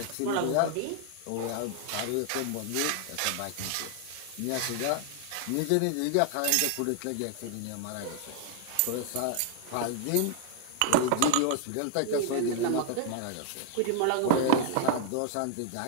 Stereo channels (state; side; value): different; both; correlation 0.00